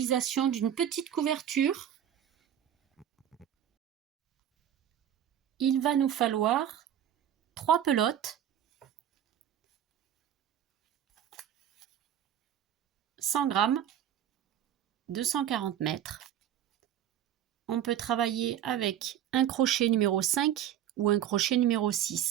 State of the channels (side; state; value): left; quieter; 10.4 dB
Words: d'une petite couverture. Il va nous falloir 3 pelotes, 100 grammes, 240 mètres. On peut travailler avec un crochet numéro 5 ou un crochet numéro